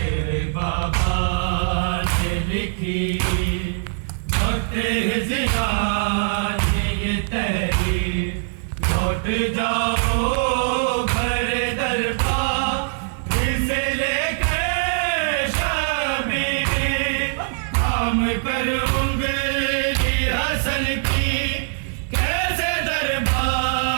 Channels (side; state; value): left; silent; digital silence